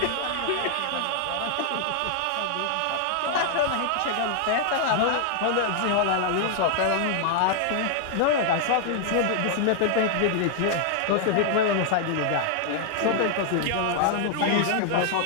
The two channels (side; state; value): both; different; correlation 0.00